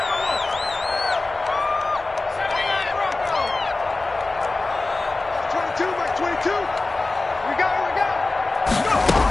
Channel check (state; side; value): quieter; right; 3.3 dB